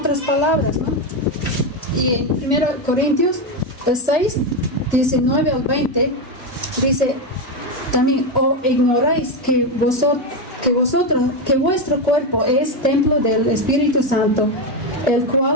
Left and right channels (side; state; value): both; normal; correlation 0.10